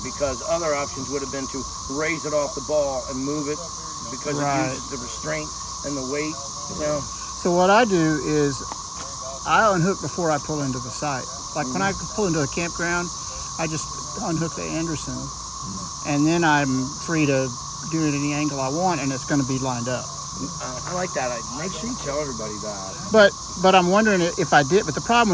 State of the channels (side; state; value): both; identical; correlation 1.00